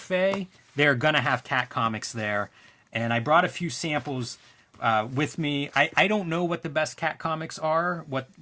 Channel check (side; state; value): both; identical; correlation 1.00